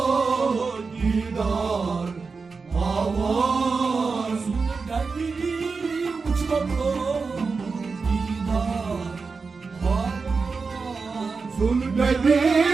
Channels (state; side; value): quieter; left; 4.6 dB